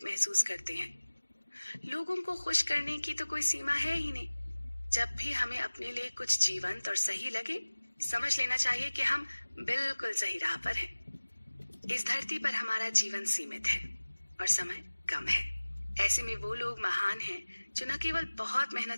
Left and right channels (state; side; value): inverted; both; correlation -1.00